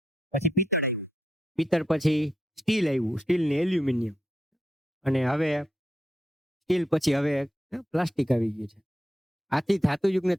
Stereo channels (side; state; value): both; normal; correlation 0.83